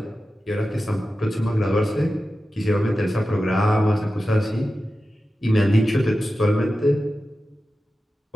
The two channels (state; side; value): normal; both; correlation 0.93